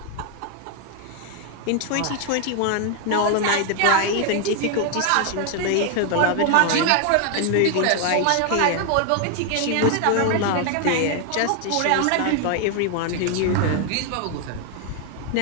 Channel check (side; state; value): both; different; correlation 0.00